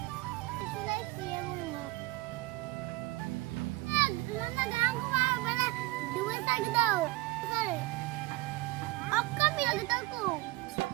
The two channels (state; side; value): quieter; left; 19.8 dB